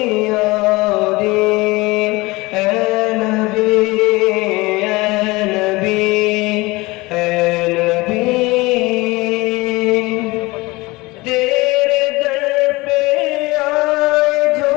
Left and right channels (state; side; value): quieter; right; 22.3 dB